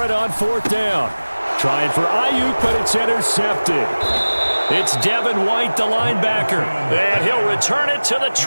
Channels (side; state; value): both; inverted; correlation -1.00